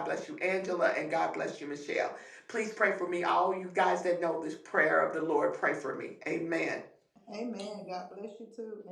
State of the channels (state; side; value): identical; both; correlation 1.00